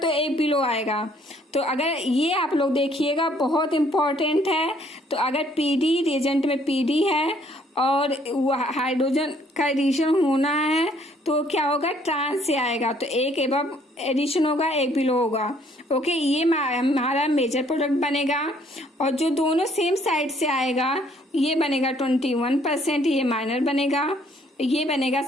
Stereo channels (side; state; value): both; normal; correlation 0.63